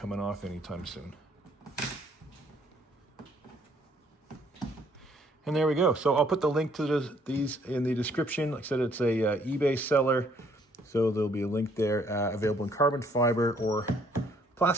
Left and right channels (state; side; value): normal; both; correlation 0.64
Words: off anytime soon. And there we go. So I'll put the link to these in the description. Like I said, it's a eBay seller, so there'll be a link there, available in carbon fiber or